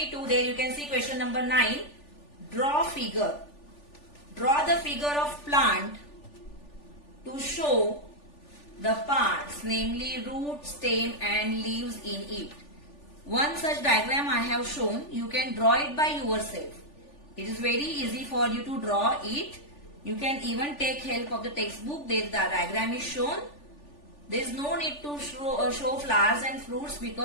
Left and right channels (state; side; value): late; right; 3.4 ms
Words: There you can see question number 9. Draw figure. Draw the figure of plant to show the parts, namely root, stem and leaves in it. One such diagram I have shown. You can draw it by yourself. It is very easy for you to draw it. You can even take help of the textbook. There the diagram is shown. There is no need to show flowers and fruits